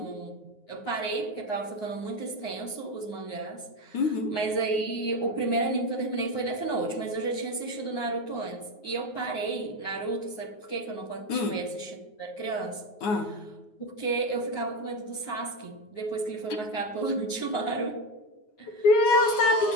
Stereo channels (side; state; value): right; late; 9.5 ms